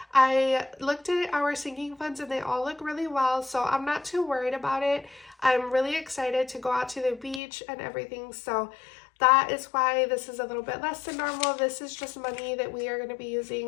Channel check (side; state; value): right; drops out; at 7.4 s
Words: I looked at our sinking funds and they all look really well, so I'm not too worried about it. I'm really excited to go out to the beach and everything, so that is why this is a little bit less than normal. This is just money that we are going to be